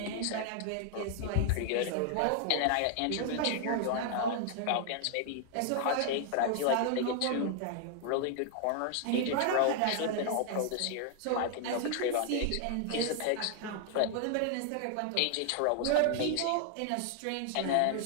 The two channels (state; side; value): different; both; correlation 0.00